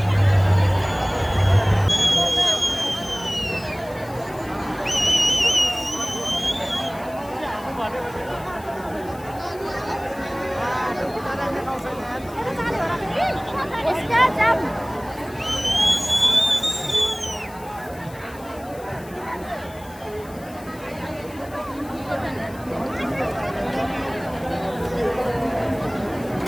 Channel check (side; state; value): left; noise; hiss, 22 dB below the sound